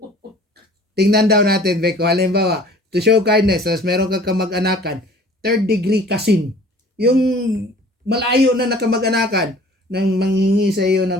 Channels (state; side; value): normal; both; correlation 0.49